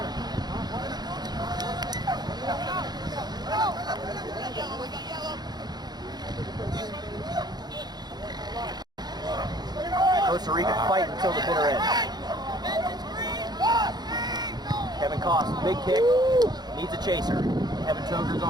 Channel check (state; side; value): late; left; 0.20 ms